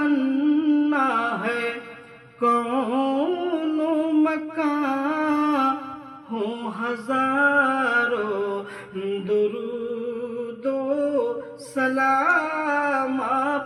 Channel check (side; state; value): both; identical; correlation 1.00